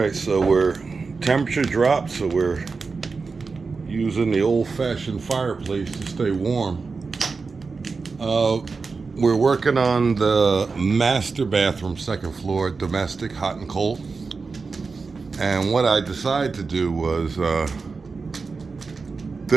so temperature dropped, so we're using the old-fashioned fireplace to stay warm. We're working on the master bathroom, second floor, domestic, hot and cold. And what I decided to do was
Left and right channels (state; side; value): quieter; left; 4.5 dB